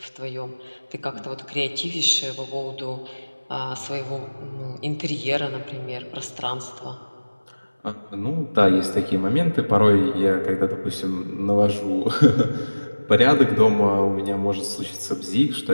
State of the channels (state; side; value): inverted; both; correlation -1.00